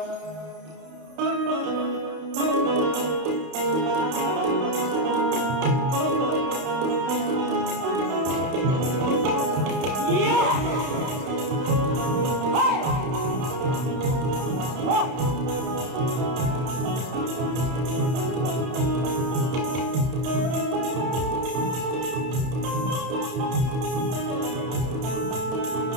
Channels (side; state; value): left; late; 31 ms